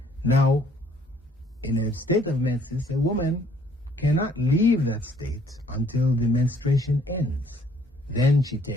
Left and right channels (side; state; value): both; normal; correlation 0.62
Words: Now, in a state of menses, a woman cannot leave that state until the menstruation ends. Then she